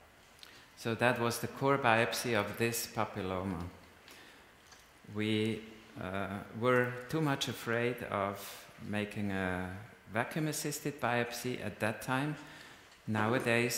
So that was the core biopsy of this papilloma. We were too much afraid of making a vacuum-assisted biopsy at that time.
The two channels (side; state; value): both; identical; correlation 1.00